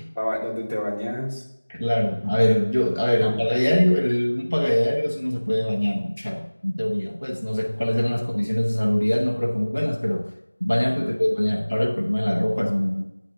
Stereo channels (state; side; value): inverted; both; correlation -1.00